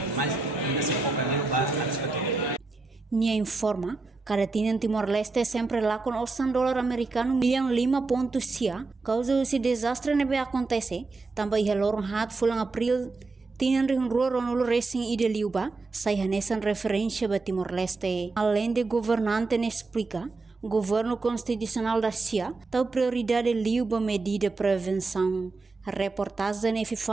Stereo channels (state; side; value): quieter; left; 3.7 dB